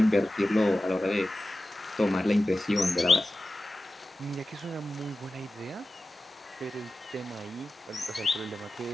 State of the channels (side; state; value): both; normal; correlation 0.95